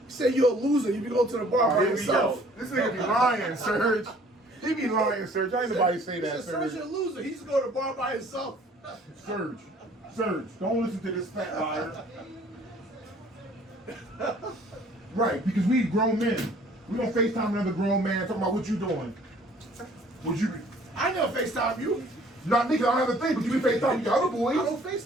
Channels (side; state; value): both; normal; correlation 0.55